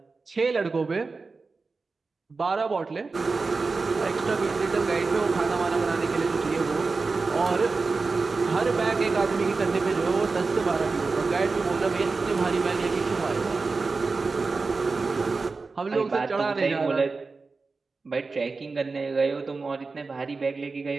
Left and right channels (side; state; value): left; quieter; 4.1 dB